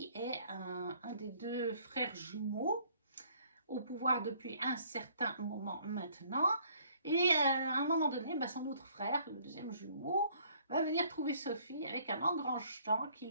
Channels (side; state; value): both; inverted; correlation -0.61